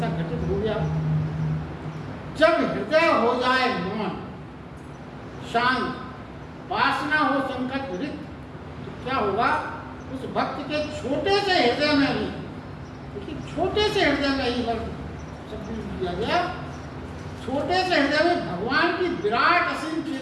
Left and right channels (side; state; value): both; identical; correlation 1.00